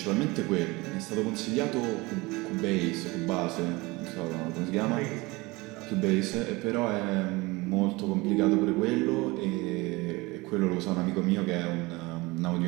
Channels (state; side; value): quieter; left; 23.1 dB